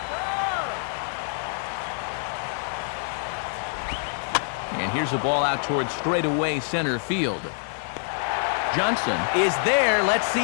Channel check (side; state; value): right; silent; 61 dB below the other